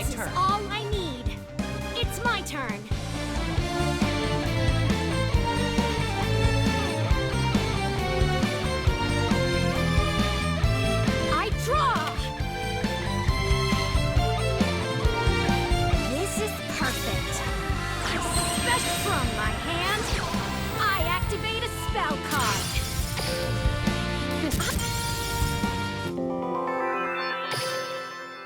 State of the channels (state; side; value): identical; both; correlation 1.00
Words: turn. Is all I need. It's my turn. spell card.